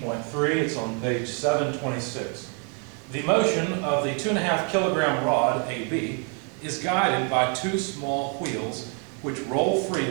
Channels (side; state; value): left; quieter; 38.8 dB